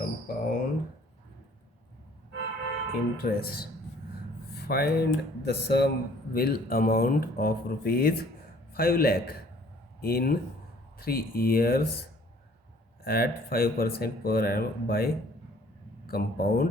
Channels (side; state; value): both; normal; correlation 0.57